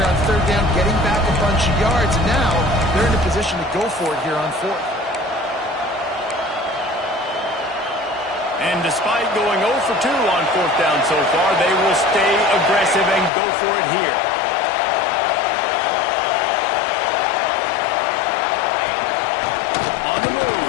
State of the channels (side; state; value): right; drops out; at 13.3 s